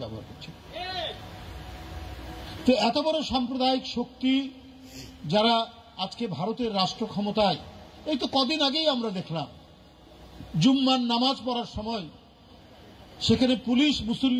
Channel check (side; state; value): both; identical; correlation 1.00